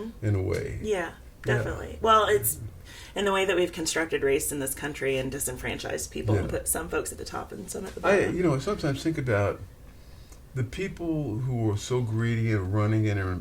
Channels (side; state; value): both; identical; correlation 1.00